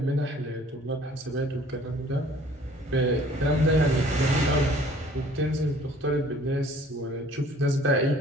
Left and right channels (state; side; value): normal; both; correlation 0.54